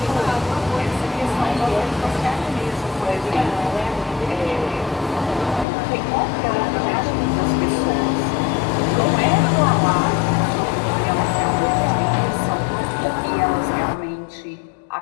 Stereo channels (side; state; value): right; drops out; at 5.7 s